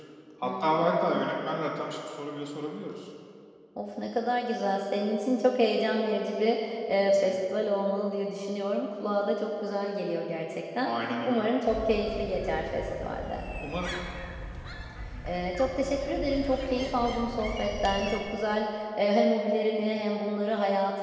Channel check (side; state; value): both; identical; correlation 1.00